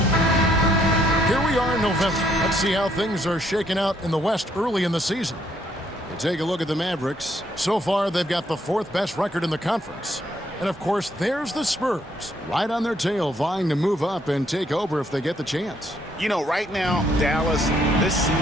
Here we are in November. Let's see how things are shaking out in the West early in the season. We take a look at the Mavericks. So far, they've got the fourth best record in the conference. And, of course, there's the Spurs, right on their tail, vying to move up and take over if they get the chance. You know, right now, Dallas, this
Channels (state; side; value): normal; both; correlation 0.70